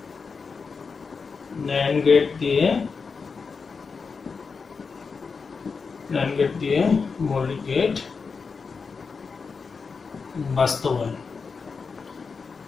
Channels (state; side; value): quieter; right; 5.1 dB